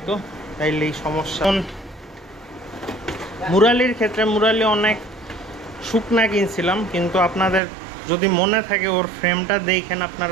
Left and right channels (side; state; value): left; drops out; at 7.6 s